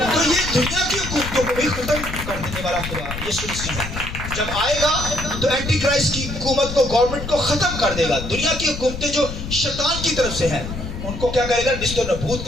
تو یہ دنیا کی حکومتوں کو بھی ختم کر دینے والا خدا یسوع مسیح ہے. جب آئے گا تو اینٹی کرائسٹ کی حکومت کو, گورنمنٹ کو ختم کر دے گا. دنیا کی حکومتیں جو شیطان کی طرف سے ہیں ان کو کیا کرے گا؟ نست و نابود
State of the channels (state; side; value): noise; left; rumble, 8 dB below the sound